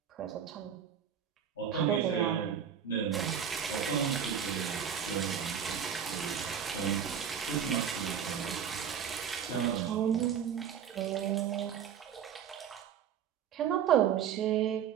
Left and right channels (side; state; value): left; quieter; 8.4 dB